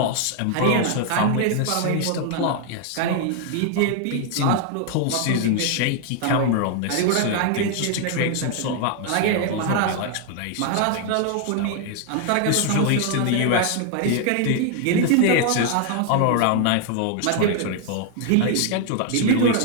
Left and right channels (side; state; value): both; different; correlation 0.00